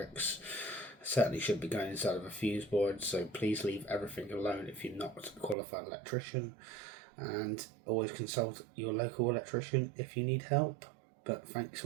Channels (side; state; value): left; drops out; at 5.6 s